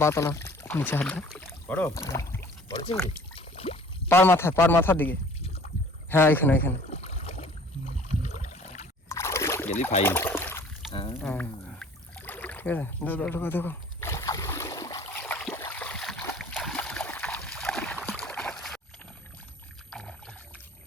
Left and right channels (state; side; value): normal; both; correlation 0.50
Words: বাতলা নিচে, হাত দাও। বড় বড় চিংড়ি। পার মাথার দিকে। হ্যাঁ এখানে এখানে। গেলি ফাইন। হ্যাঁ ঠিক আছে, দেখো দেখো দেখো।